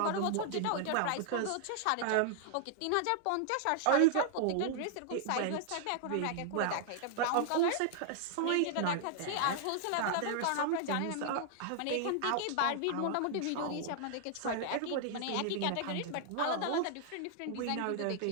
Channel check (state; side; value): different; both; correlation -0.01